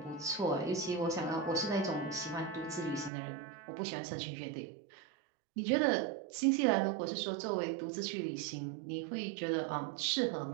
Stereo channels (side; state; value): left; drops out; at 3.1 s